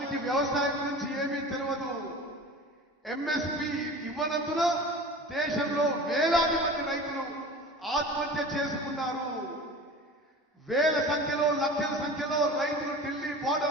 వ్యవసాయం గురించి ఏమీ తెలియదు. ఎంఎస్పీ ఇవ్వనందున దేశంలో వేలాది మంది రైతులు ఆత్మహత్య చేసుకున్నారు. వేల సంఖ్యలో లక్షల సంఖ్యలో రైతులు ఢిల్లీ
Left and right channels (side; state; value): both; normal; correlation 0.37